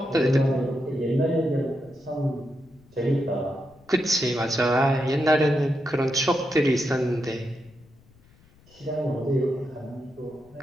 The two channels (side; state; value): left; noise; rumble, 28 dB below the sound